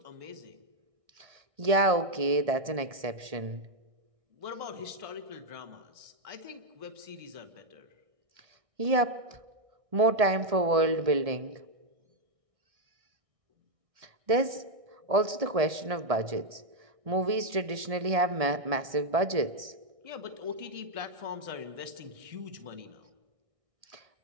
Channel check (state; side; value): late; left; 1.8 ms